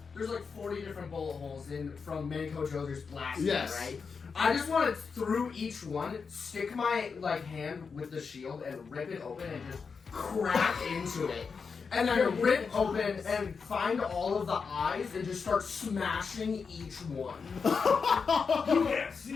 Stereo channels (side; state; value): right; quieter; 5.4 dB